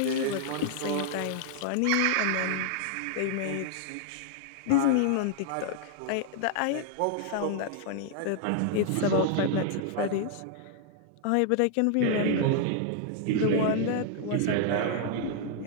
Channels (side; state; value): both; different; correlation 0.00